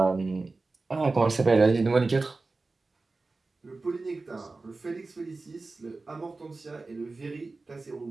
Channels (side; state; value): left; quieter; 3.6 dB